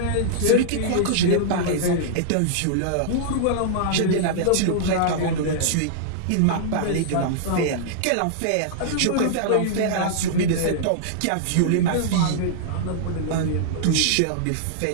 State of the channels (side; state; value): both; different; correlation -0.02